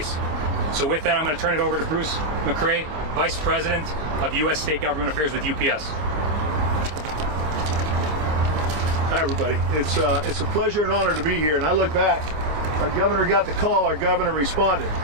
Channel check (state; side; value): late; left; 26 ms